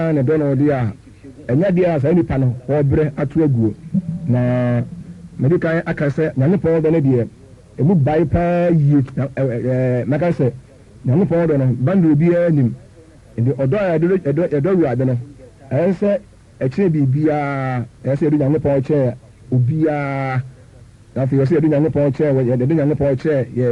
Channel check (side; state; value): both; identical; correlation 1.00